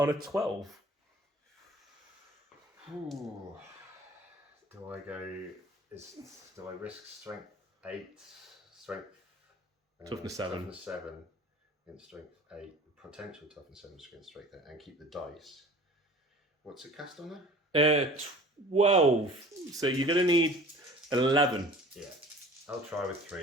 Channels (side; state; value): both; normal; correlation 0.45